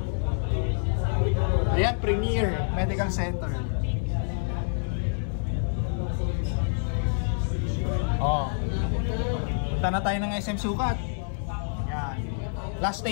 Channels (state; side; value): silent; right; digital silence